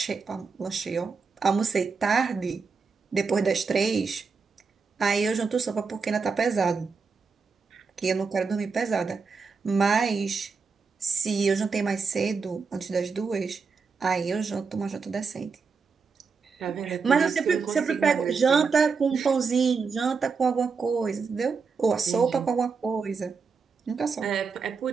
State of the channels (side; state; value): left; quieter; 5.1 dB